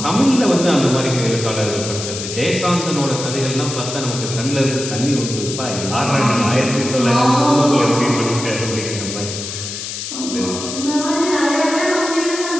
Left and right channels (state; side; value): noise; left; hiss, 7 dB below the sound